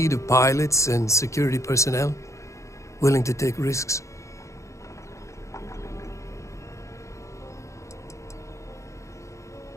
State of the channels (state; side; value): late; right; 0.15 ms